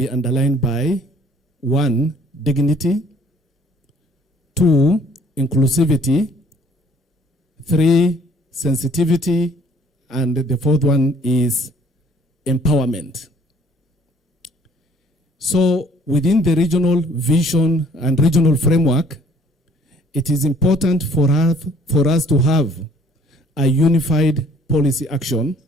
underlined by 1, dignity, 2, inclusivity, 3, sensitivity, and the 4th one is empowerment. So within the regional vision and regional framework, it is important for us to have a unified policy action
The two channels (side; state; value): both; normal; correlation 0.58